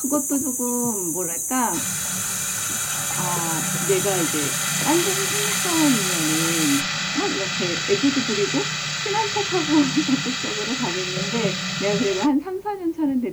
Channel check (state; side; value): identical; both; correlation 1.00